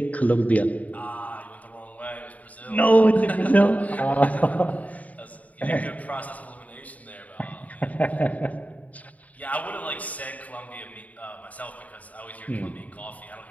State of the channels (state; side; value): late; right; 0.071 ms